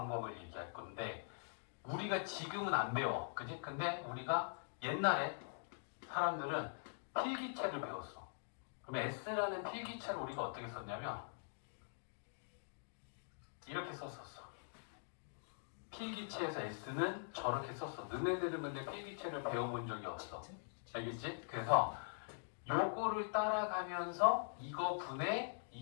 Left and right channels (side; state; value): right; silent; digital silence